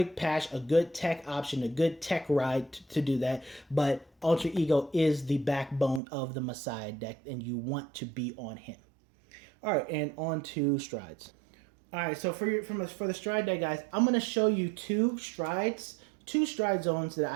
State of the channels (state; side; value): drops out; left; at 6.0 s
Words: patch, a good tech option, a good tech ride to do that. But Ultra Ego is the backbone of the Messiah deck, and you want to be on him. All right, and on to strides. All right, so for the stride deck, guys, I'm going to show you two stride zones that